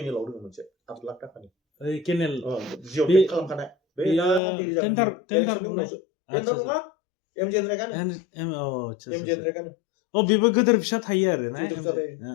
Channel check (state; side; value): drops out; right; at 4.4 s